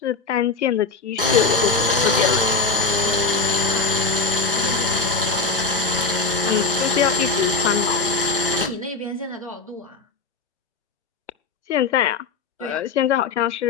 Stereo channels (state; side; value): quieter; right; 4.3 dB